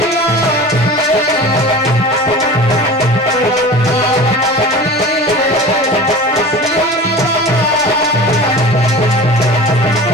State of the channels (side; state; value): both; normal; correlation 0.37